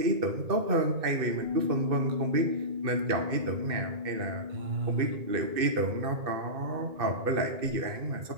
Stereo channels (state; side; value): late; left; 2.6 ms